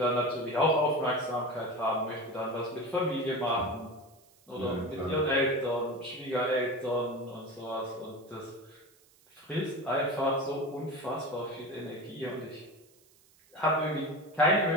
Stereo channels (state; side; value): noise; right; hiss, 30 dB below the sound